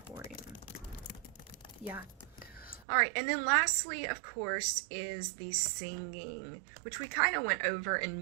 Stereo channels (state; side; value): drops out; left; at 2.9 s